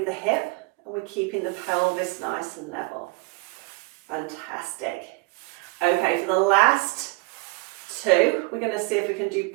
the hip, and we're keeping the pelvis nice and level. Fantastic. Okay, for the last two, we're going to see if we can do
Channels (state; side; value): quieter; left; 25.2 dB